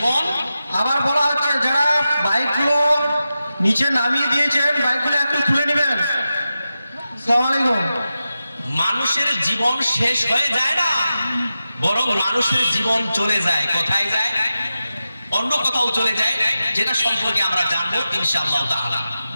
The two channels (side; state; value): both; inverted; correlation -0.92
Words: আবার বলা হচ্ছে যারা বাইকগুলো নিচে নামিয়ে দিয়েছেন বাইকগুলো একটু তুলে নেবেন। আসসালামু আলাইকুম। মানুষের জীবন শেষ হয়ে যায় না, বরং মানুষের জীবন চলে যায়। কোথায় যায়? অন্য কোথাও চলে যায়, যেটা সম্পর্কে আমরা জানবো ইনশাআল্লাহ তাআলা।